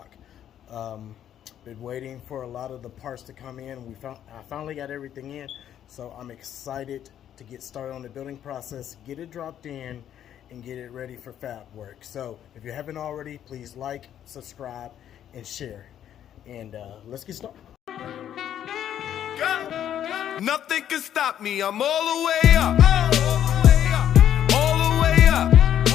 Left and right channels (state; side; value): quieter; right; 10.4 dB